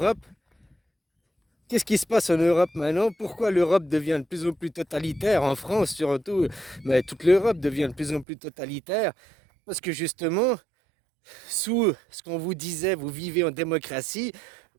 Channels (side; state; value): left; drops out; at 8.2 s